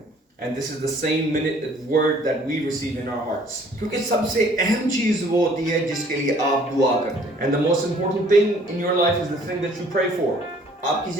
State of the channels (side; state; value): both; normal; correlation 0.57